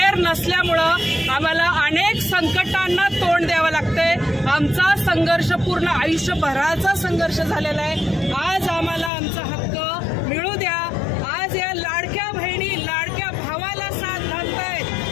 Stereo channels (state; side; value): drops out; right; at 9.1 s